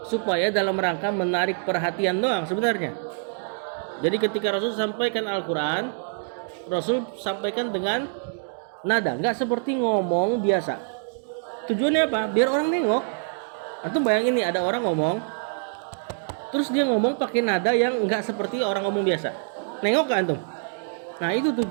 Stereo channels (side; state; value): left; silent; digital silence